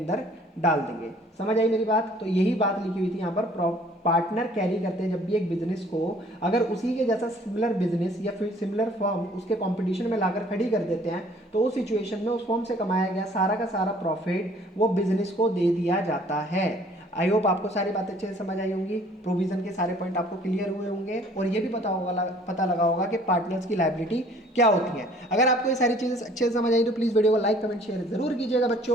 डाल देंगे। समझ आई मेरी बात? तो यही बात लिखी हुई थी यहाँ पर। पार्टनर कैरी करते हैं जब भी एक बिजनेस को, अगर उसी के जैसा सिमिलर बिजनेस या फिर सिमिलर फर्म उसके कंपटीशन में लाकर खड़ी कर देते हैं तो उस सिचुएशन में उस फर्म से कमाया गया सारा का सारा प्रॉफिट वो बिजनेस को दे दिया जाता है। आई होप आपको सारी बातें अच्छे से समझ आई होंगी, प्रोविजन के सारे पॉइंट आपको क्लियर हुए होंगे, और ये भी पता लगा होगा कि पार्टनर्स की लायबिलिटी क्या होती है। अगर आपको ये सारी चीज़ें अच्छे से समझ आई तो प्लीज़ वीडियो को लाइक कमेंट शेयर जरूर कीजिएगा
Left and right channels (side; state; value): both; normal; correlation 0.56